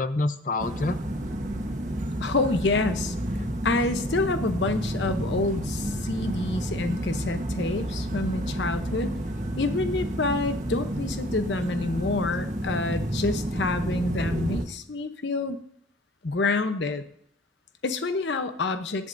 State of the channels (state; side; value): normal; both; correlation 0.50